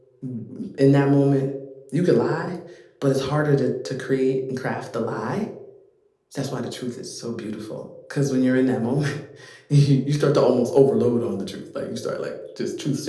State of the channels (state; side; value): identical; both; correlation 1.00